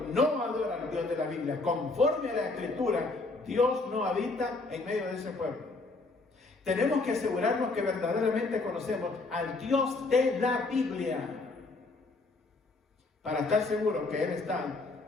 no adora al Dios de la Biblia conforme a la Escritura, Dios no habita en medio de ese pueblo. Tenemos que asegurarnos que verdaderamente conocemos al Dios de la Biblia para estar seguros que Él está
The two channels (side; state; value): right; quieter; 3.4 dB